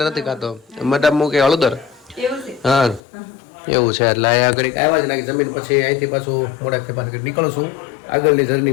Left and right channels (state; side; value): drops out; right; at 3.0 s